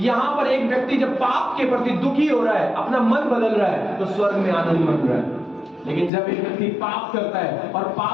पर एक व्यक्ति जब पाप के प्रति दुखी हो रहा है, अपना मन बदल रहा है, तो स्वर्ग में आनंद मन रहा है। लेकिन जब एक व्यक्ति पाप करता है और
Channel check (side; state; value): right; drops out; at 6.1 s